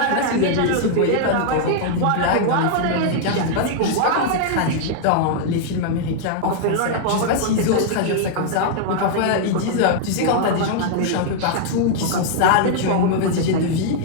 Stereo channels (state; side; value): different; both; correlation -0.01